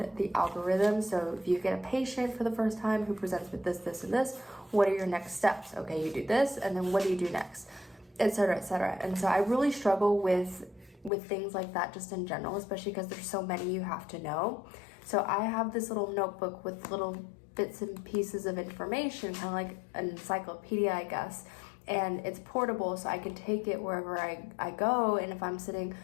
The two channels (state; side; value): drops out; right; at 11.1 s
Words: the algorithm. So if you get a patient for the first time who presents with this, this, and this, what are your next steps? Okay, you do this, and then what do you do next? Etc., etc. And so I really struggle with things like that just in general, especially because there's so many you have to know. So I have this little notebook with little bits and pieces of information, kind of like an encyclopedia, I guess. And it's portable, so I can take it wherever I go. And if I'm sitting,